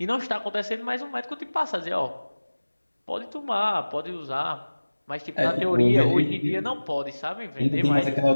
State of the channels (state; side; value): inverted; both; correlation -1.00